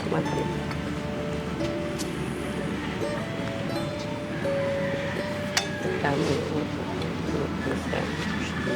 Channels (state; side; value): identical; both; correlation 1.00